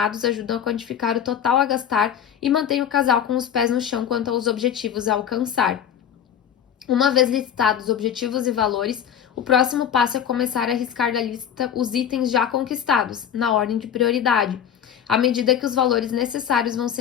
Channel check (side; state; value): right; quieter; 9.1 dB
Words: ajudam a quantificar o total a gastar e mantêm o casal com os pés no chão quanto aos objetivos a alcançar. Uma vez listados os objetivos e valores, o próximo passo é começar a riscar da lista os itens já conquistados, na ordem de prioridade, à medida que os valores necessários vão